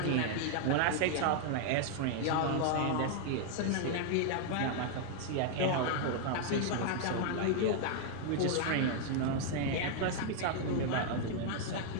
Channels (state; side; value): different; both; correlation 0.00